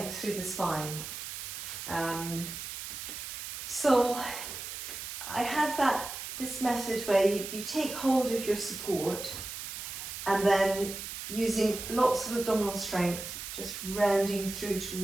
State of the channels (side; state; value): right; noise; hiss, 8 dB below the sound